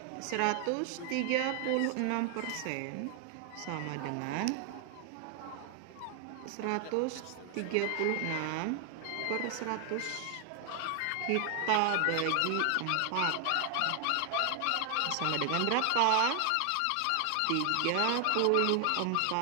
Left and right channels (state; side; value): different; both; correlation 0.00